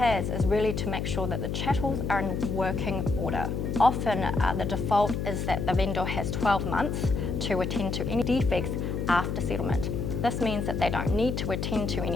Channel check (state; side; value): noise; left; hum, 2 dB below the sound